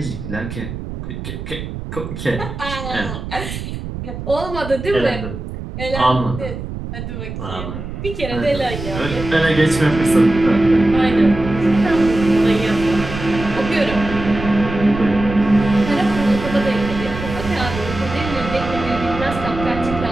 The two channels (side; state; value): right; noise; rumble, 8 dB below the sound